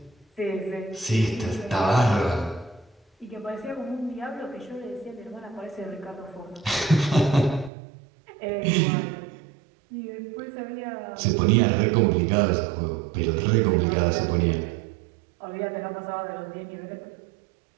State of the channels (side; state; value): left; drops out; at 7.7 s